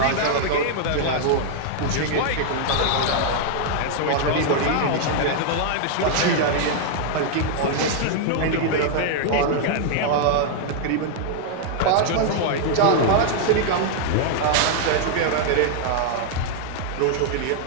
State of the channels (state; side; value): different; both; correlation -0.01